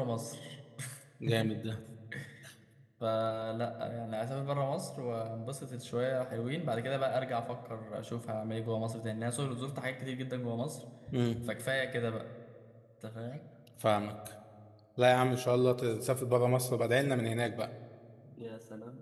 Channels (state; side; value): identical; both; correlation 1.00